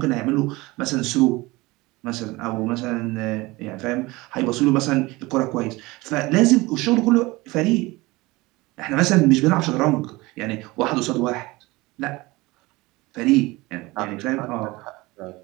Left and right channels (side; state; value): left; quieter; 21.7 dB